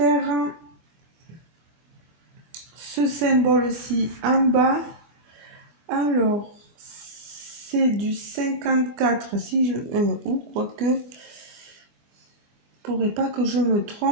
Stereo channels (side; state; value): left; late; 25 ms